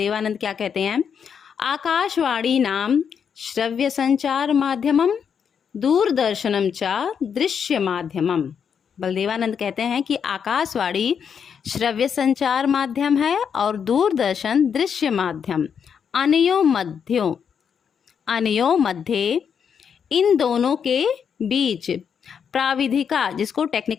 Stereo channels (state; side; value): quieter; right; 7.2 dB